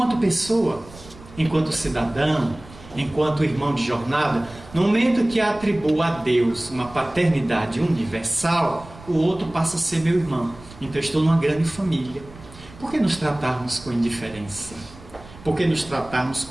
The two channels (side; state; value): right; noise; rumble, 19 dB below the sound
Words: pessoa, enquanto cidadão, enquanto irmão de jornada, no momento que atribuo a Deus uma paternidade universal, o outro passa a ser meu irmão. Então estou numa grande família. Por que nos tratarmos com indiferença? Por que nos tratarmos